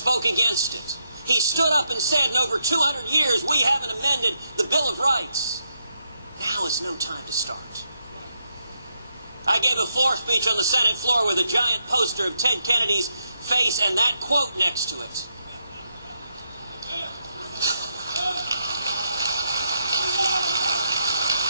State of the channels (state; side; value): inverted; both; correlation -0.80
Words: against it. He stood up and said, in over 200 years, we haven't amended the Bill of Rights. Now is no time to start. I gave a floor speech on the Senate floor with a giant poster of Ted Kennedy's face and that quote next to it.